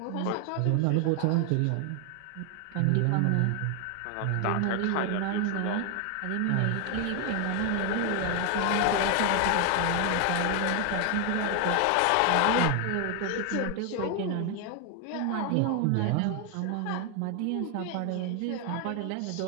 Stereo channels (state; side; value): different; both; correlation 0.01